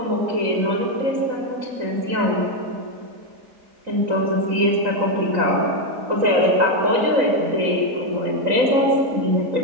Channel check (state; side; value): late; left; 3.9 ms